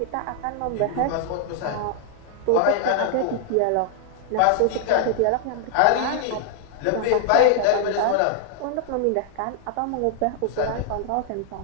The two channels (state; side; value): different; both; correlation -0.01